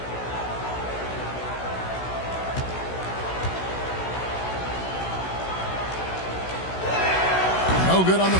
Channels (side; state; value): right; late; 16 ms